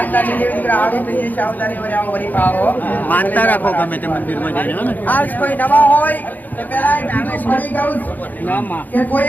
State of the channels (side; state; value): right; late; 0.083 ms